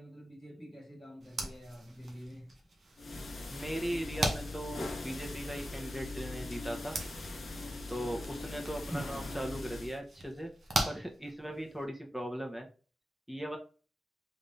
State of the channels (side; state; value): both; normal; correlation 0.91